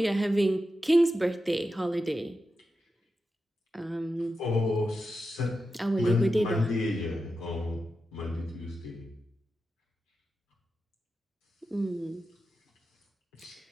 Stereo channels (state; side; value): normal; both; correlation 0.90